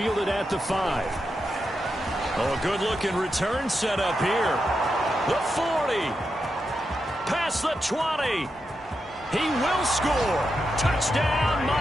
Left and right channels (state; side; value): normal; both; correlation 0.86